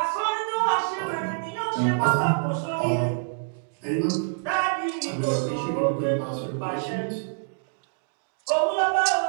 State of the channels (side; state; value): left; silent; digital silence